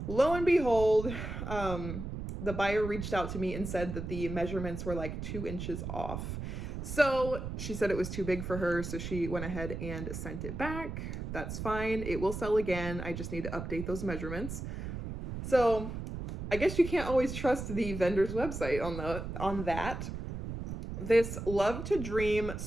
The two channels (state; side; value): noise; right; rumble, 6 dB below the sound